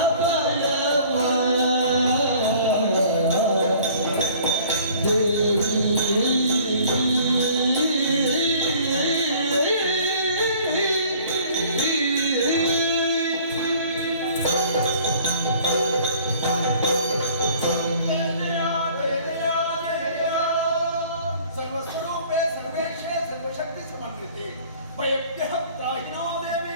ಸರ್ವಸ್ವರೂಪೇ ಸರ್ವೇಶೇ ಸರ್ವಶಕ್ತಿ ಸಮನ್ವಿತೆ ಭಯಭ್ಯಃ ತ್ರಾಹಿನೋ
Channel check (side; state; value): both; inverted; correlation -0.52